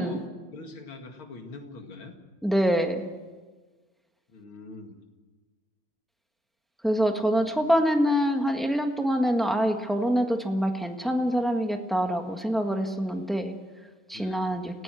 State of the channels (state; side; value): normal; both; correlation 0.85